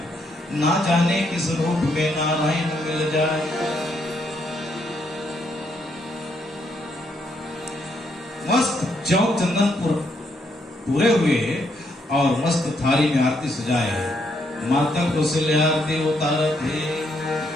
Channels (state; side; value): normal; both; correlation 0.75